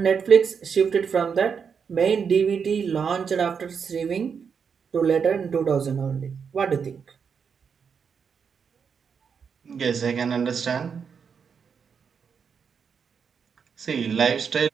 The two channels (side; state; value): left; quieter; 6.5 dB